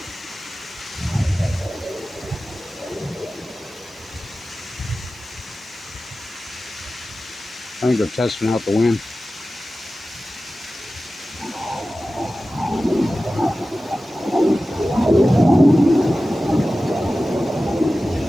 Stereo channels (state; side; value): normal; both; correlation 0.95